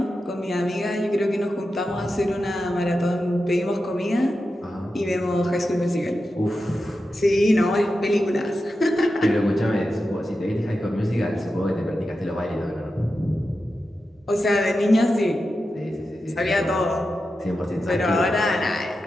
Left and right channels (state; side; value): normal; both; correlation 0.91